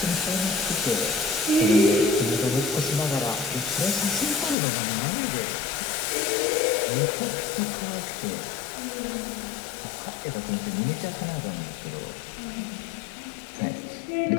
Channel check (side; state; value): right; drops out; at 4.5 s